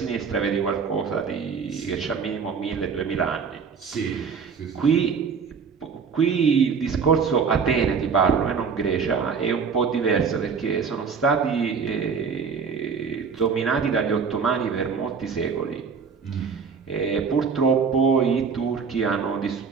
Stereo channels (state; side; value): quieter; left; 5.8 dB